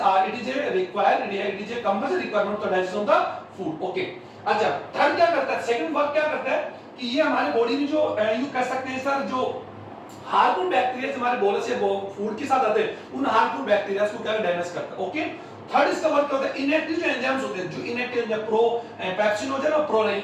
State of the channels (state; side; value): identical; both; correlation 1.00